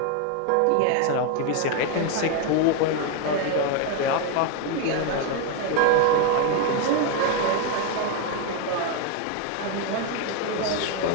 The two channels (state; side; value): different; both; correlation 0.01